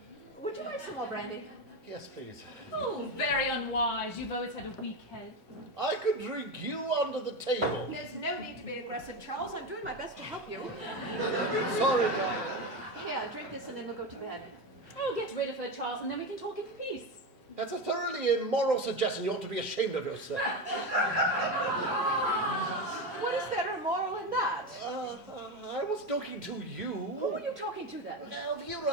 Would you like some more brandy? Yes, please. Oh, very unwise. You've always had a weak head. I could drink you under the table. There's no need to be aggressive, Charles. I'm doing my best to help you. Sorry, darling. Here, drink this and then we'll go to bed. Oh, get rid of her, Charles, and then we can talk in peace. That's a thoroughly immoral suggestion. You ought to be ashamed of yourself. What is there immoral in that? I was talking to you. Who are you talking to then? Elvira,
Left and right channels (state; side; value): normal; both; correlation 0.17